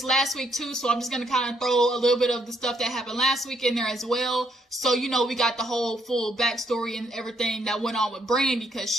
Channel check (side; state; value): both; normal; correlation 0.71